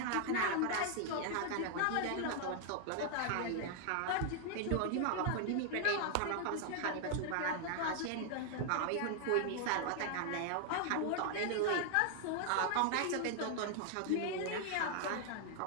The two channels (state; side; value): different; both; correlation 0.00